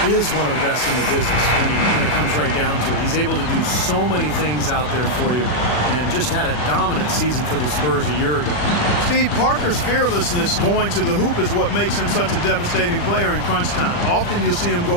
is one of the best in the business when it comes right down to it. He's able to do so many things out there for you and just had a dominant season for the Spurs a year ago. Steve, Parker's fearlessness going to the hoop is what makes him such a devastating player in crunch time. Often you'll see him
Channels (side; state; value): right; late; 40 ms